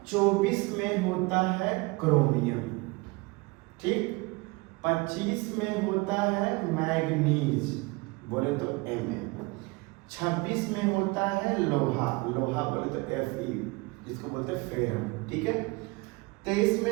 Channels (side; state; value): left; quieter; 25.4 dB